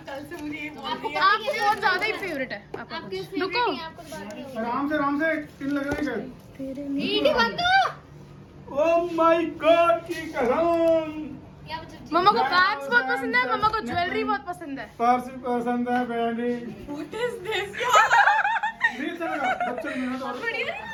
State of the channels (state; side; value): identical; both; correlation 1.00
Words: कल से मुझे ये बोल आपको बहुत ज्यादा ही फेवरेट है आपका। रुको आराम से पिन लग रही है। ईडी बंद करो। ओह माय गॉड की कसम। मम्मा को बैग्स बहुत पसंद है, मम्मा को ज्वेलरी बहुत पसंद है। पर्स पसंद है, बैंडी What is this? नहीं चलेगा, बच्चे मेहनत और